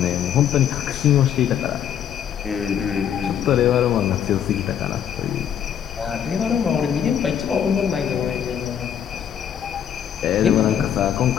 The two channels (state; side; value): quieter; right; 9.2 dB